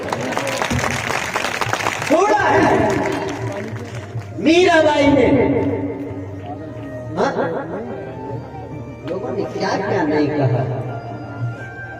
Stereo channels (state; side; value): identical; both; correlation 1.00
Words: छोड़ा है। मीराबाई ने, लोगों ने क्या क्या नहीं कहा,